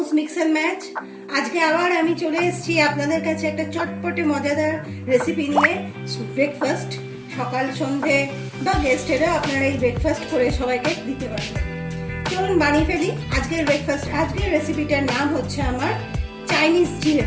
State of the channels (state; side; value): identical; both; correlation 1.00